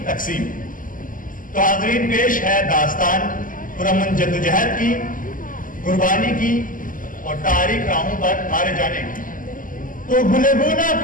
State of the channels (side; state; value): right; late; 0.39 ms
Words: تقسیم۔ تو حاضرین پیش ہے داستان پرامن جدوجہد کی، قربانی کی اور تاریخ راہوں پر مارے جانے کی۔ تو گلگونا